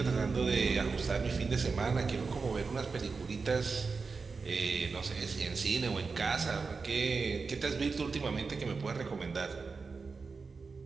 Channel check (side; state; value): left; quieter; 4.6 dB